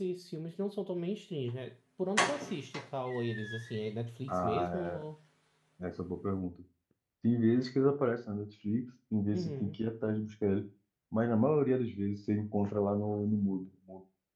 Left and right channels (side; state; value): both; identical; correlation 1.00